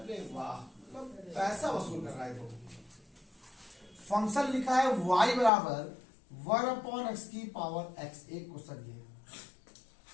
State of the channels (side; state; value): right; drops out; at 5.5 s